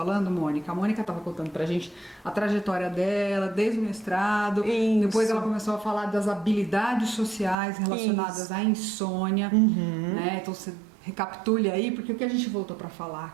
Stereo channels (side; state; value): left; drops out; at 7.6 s